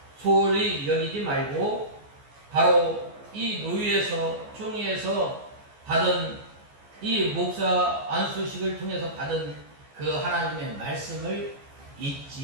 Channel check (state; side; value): late; left; 14 ms